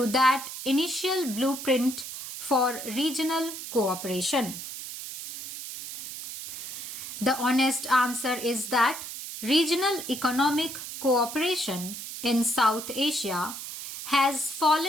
that initial blueprint for regional cooperation. The honest answer is that regional economic cooperation in South Asia has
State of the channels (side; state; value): right; noise; hiss, 9 dB below the sound